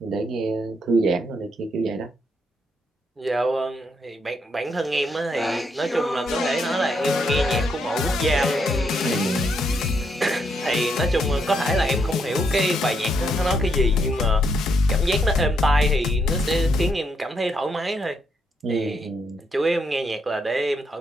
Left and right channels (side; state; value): both; normal; correlation 0.77